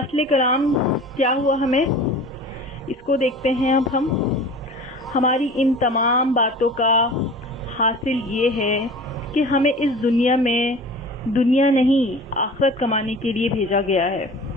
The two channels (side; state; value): both; normal; correlation 0.40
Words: کلام کیا ہوا ہمیں، اس کو دیکھتے ہیں اب ہم۔ ہماری ان تمام باتوں کا حاصل یہ ہے کہ ہمیں اس دنیا میں دنیا نہیں آخرت کمانے کے لیے بھیجا گیا ہے۔